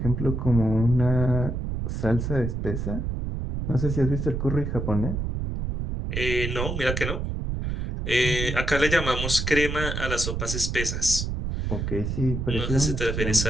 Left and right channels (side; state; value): right; noise; rumble, 3 dB below the sound